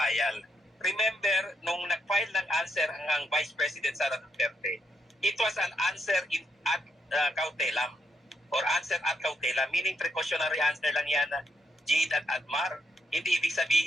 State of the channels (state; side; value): normal; both; correlation 0.79